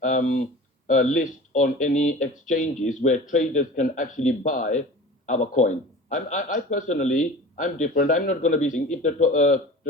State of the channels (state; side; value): normal; both; correlation 0.38